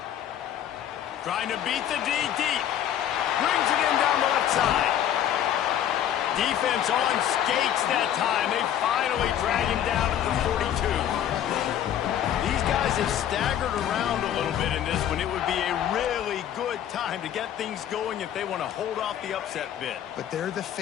Trying to beat the D deep. Brings it in down the left side. Defense on skates that time. They finally drag him down at the 42. These guys have staggered around a little bit in this one. It would be a really good time to get things going if they want to hold off the upset bid. But they're the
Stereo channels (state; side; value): quieter; right; 10.6 dB